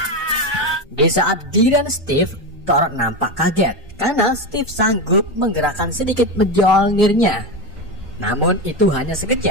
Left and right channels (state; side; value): normal; both; correlation 0.16